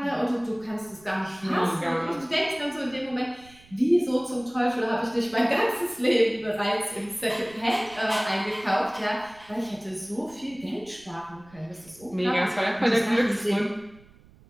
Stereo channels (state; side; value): noise; right; rumble, 25 dB below the sound